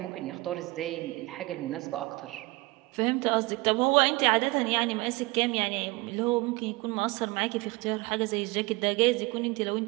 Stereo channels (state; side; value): quieter; left; 23.0 dB